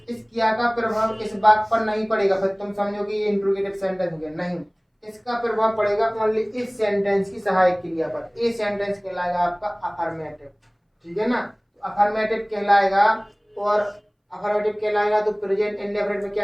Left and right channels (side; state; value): both; identical; correlation 1.00